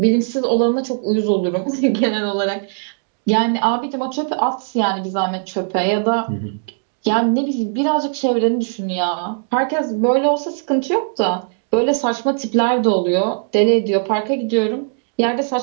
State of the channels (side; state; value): left; silent; digital silence